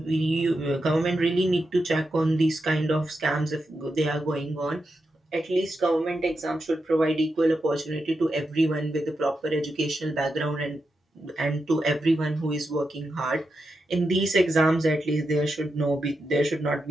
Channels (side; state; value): both; normal; correlation 0.87